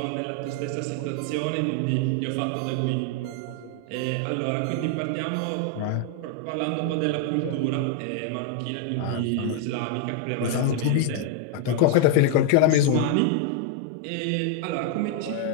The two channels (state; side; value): different; both; correlation 0.00